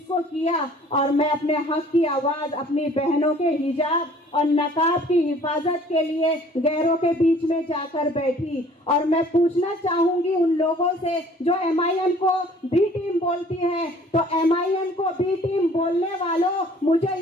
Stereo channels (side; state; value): both; normal; correlation 0.53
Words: को किया और मैं अपने हक की आवाज़ अपनी बहनों के हिजाब और नकाब की हिफाजत के लिए गैरों के बीच में जाकर बैठी। और मैं पूछना चाहूँगी उन लोगों से जो MIM को बी टीम बोलती है, तो MIM को बी टीम बोलने वालों, मुझे